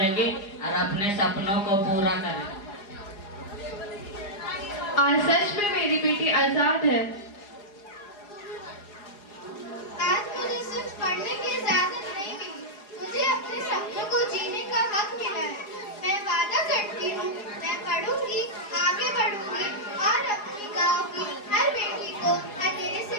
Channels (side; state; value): right; late; 4.9 ms